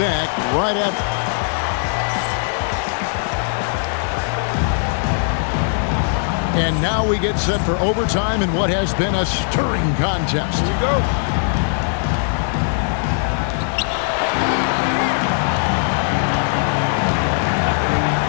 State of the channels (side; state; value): right; silent; 66 dB below the other